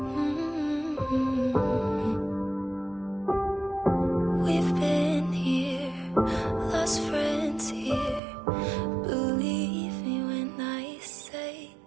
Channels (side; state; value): left; drops out; at 8.2 s